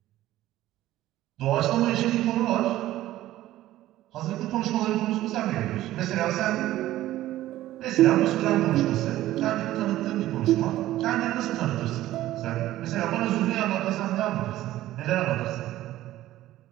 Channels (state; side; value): quieter; left; 14.7 dB